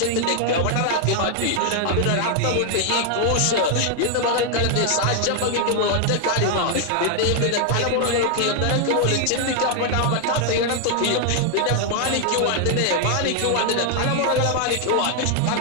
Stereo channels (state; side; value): different; both; correlation 0.00